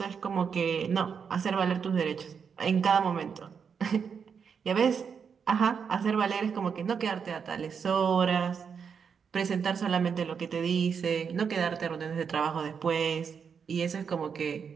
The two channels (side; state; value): left; quieter; 6.6 dB